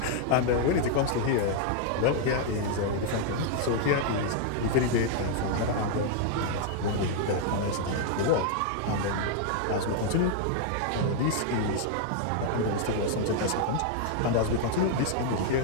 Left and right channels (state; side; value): different; both; correlation 0.00